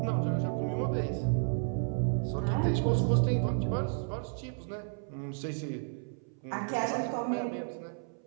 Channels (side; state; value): left; silent; 56 dB below the other